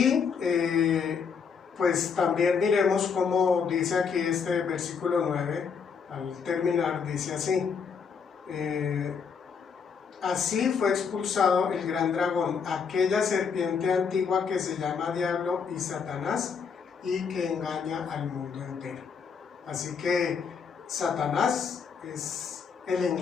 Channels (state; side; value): quieter; right; 6.1 dB